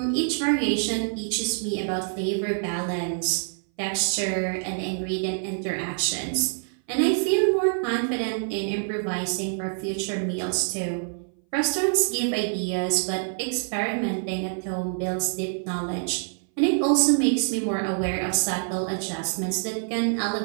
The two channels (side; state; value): left; silent; 59 dB below the other